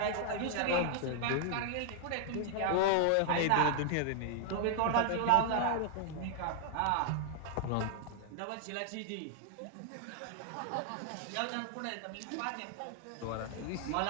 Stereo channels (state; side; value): different; both; correlation 0.00